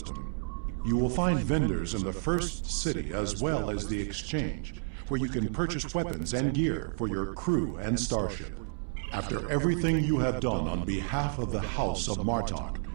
You will find vendors in the first city as well as the exchange, where you can purchase weapons and gear for your crew and starship. After everything you have done on behalf of the House of Martok,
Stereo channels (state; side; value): silent; left; 57 dB below the other